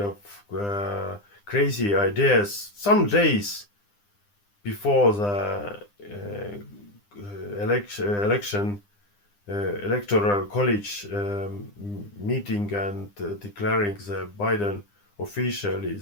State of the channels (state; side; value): late; right; 9.9 ms